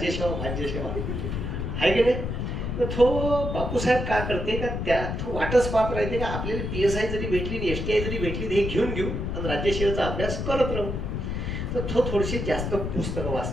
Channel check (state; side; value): noise; left; rumble, 3 dB below the sound